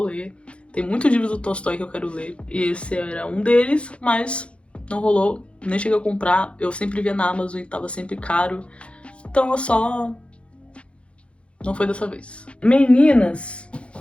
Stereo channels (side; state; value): right; late; 0.060 ms